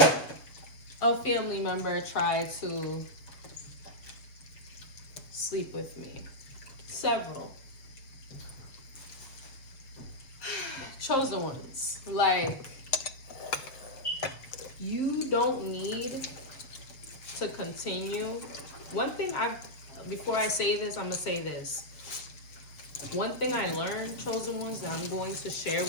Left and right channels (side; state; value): right; late; 7.2 ms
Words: a family member try to sleep with me. Several. Chosen ones, like, you don't need to continue. One thing before I say this, I'm gonna say this. One thing I learned, chosen ones, that I'm going to share